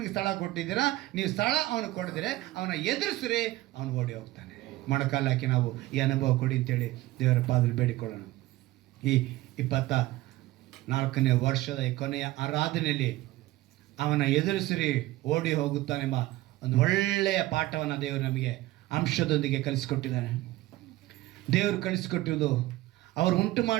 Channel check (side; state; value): left; quieter; 17.3 dB